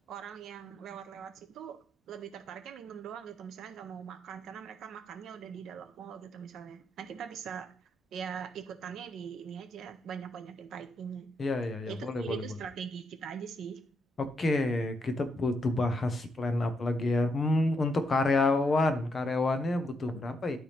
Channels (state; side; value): normal; both; correlation 0.79